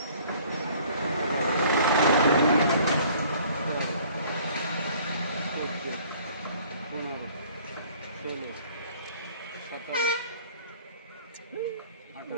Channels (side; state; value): both; inverted; correlation -0.54